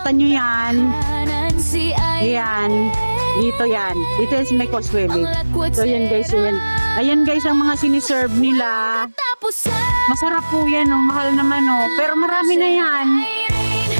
nyo yan. Yan. Dito yan. Dito yan sa may Causeway Bay. So, yan guys. Yan. Ayan guys, ang mga siniserve nila. Masarap po yan. Oh. Mahal naman. Oh. Pero marami na yan.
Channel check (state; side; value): inverted; both; correlation -1.00